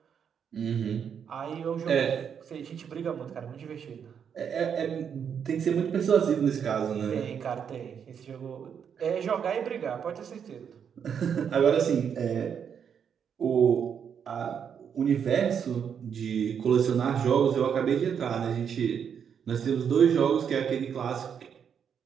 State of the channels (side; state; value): left; quieter; 7.6 dB